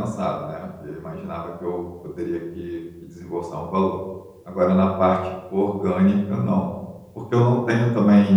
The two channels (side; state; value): both; identical; correlation 1.00